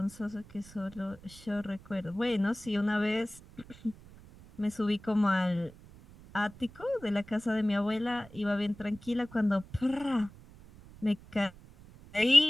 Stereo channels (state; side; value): noise; right; rumble, 21 dB below the sound